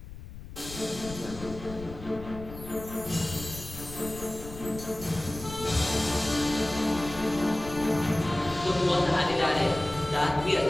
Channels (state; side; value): noise; left; rumble, 13 dB below the sound